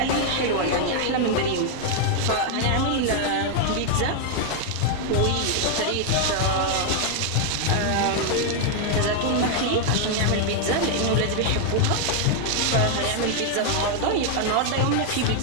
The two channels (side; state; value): both; different; correlation 0.00